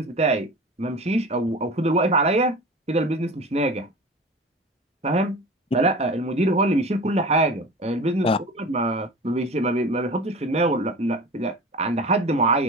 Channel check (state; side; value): normal; both; correlation 0.35